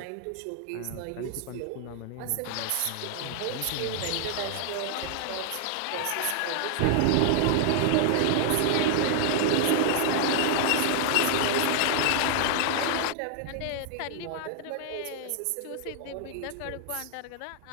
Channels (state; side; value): different; both; correlation 0.00